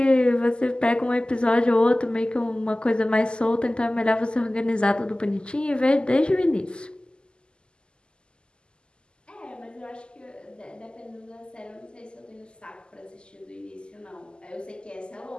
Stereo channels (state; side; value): late; right; 0.049 ms